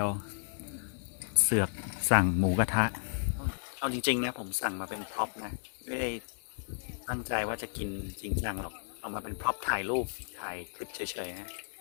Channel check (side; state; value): right; silent; digital silence